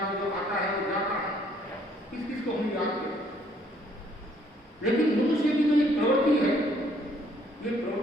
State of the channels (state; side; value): normal; both; correlation 0.64